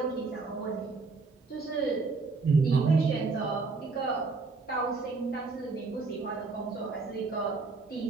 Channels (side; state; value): left; quieter; 4.1 dB